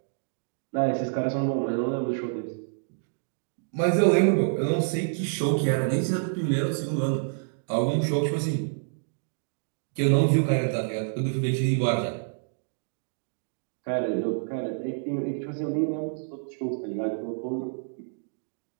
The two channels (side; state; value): left; silent; digital silence